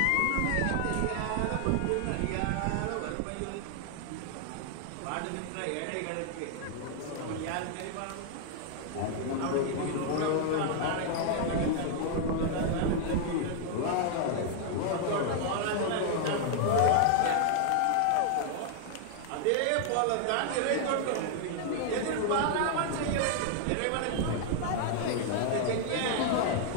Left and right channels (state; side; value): different; both; correlation 0.00